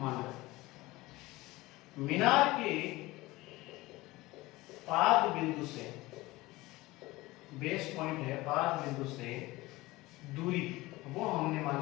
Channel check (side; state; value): right; quieter; 19.8 dB